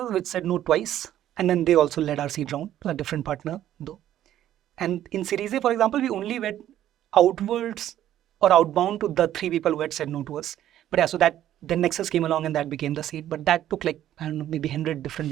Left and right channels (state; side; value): quieter; left; 12.0 dB